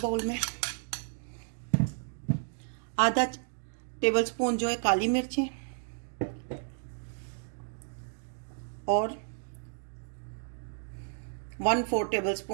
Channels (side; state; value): left; silent; digital silence